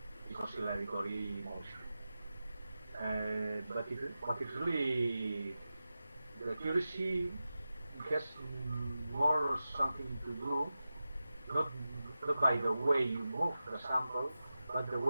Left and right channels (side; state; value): both; inverted; correlation -0.93